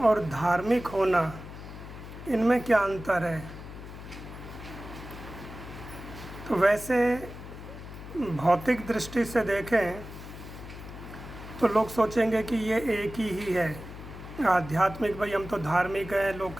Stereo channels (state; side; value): noise; left; hum, 12 dB below the sound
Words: धार्मिक होना, इनमें क्या अंतर है। तो वैसे भौतिक दृष्टि से देखें तो लोग सोचेंगे कि ये एक ही है। आध्यात्मिक, भाई हम तो धार्मिक हैं, लोग